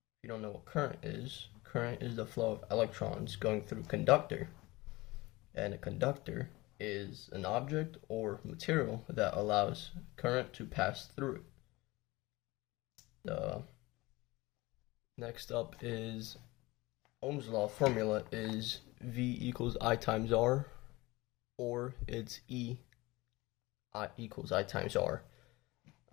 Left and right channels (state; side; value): quieter; right; 21.3 dB